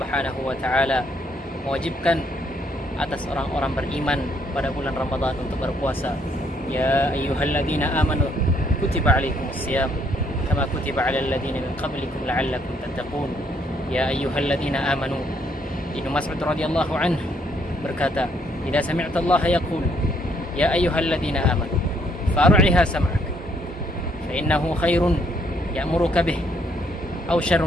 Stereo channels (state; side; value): normal; both; correlation 0.69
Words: wa taala mewajibkan atas orang-orang beriman pada bulan Ramadan untuk berpuasa. Ya ayyuhalladzina amanu kutiba alaikumusiyam kama kutiba alal ladzina min qablikum la'allakum tattaqun. Ya ayyuhalladzina amanu. Ibnu Mas'ud radhiyallahu anhu berkata, "Idza sami'ta Allah yaqul ya ayyuhalladzina amanu far'iha sam'ak fa innahu khairun ya'muruka bih aw